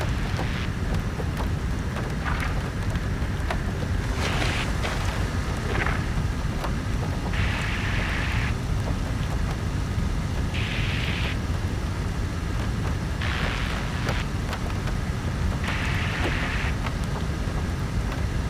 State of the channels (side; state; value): both; identical; correlation 1.00